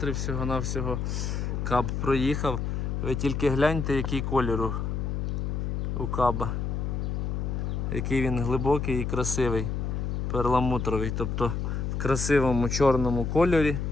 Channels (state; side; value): noise; left; hum, 1 dB below the sound